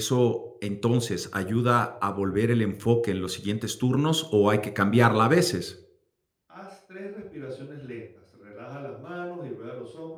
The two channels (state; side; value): identical; both; correlation 1.00